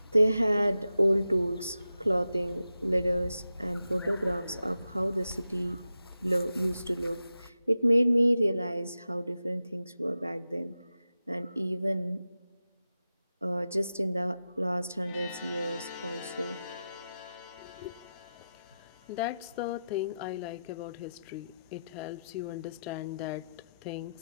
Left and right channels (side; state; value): both; inverted; correlation -0.91